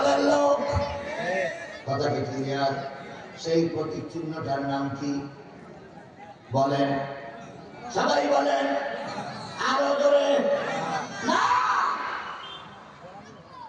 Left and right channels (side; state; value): both; identical; correlation 1.00